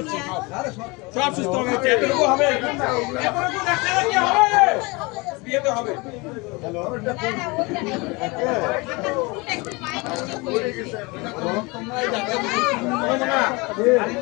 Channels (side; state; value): right; quieter; 26.2 dB